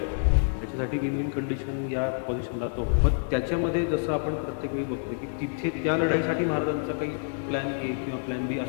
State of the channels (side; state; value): right; silent; digital silence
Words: त्याच्यासाठी विन विन कंडिशन या पोझिशनला तो. पण त्याच्यामध्ये जसं आपण प्रत्येक वेळी बघतो की तिथे त्या लढाईसाठी महाराजांचा काही प्लॅन ए किंवा प्लॅन बी